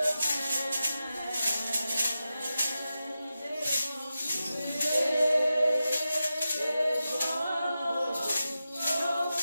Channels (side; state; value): both; inverted; correlation -0.91